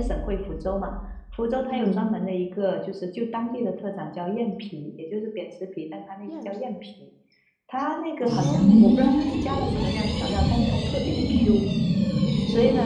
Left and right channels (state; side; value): identical; both; correlation 1.00